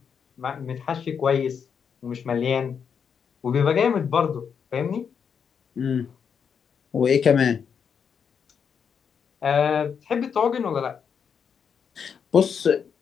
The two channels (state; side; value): quieter; right; 6.9 dB